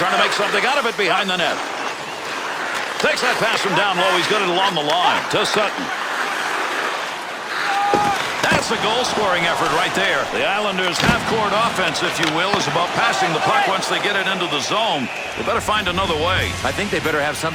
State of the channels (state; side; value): identical; both; correlation 1.00